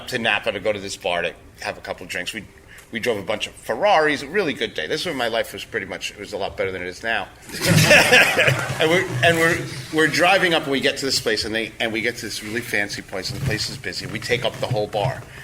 to Napa to go to this bar to have a couple of drinks. We drove a bunch of Ferraris. A really good day. This is when my life was it was a lot better than it is now. and we're driving up, and we get to this place, and we get to this really fancy place, and the place is busy. We take up the whole bar.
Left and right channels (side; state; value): both; identical; correlation 1.00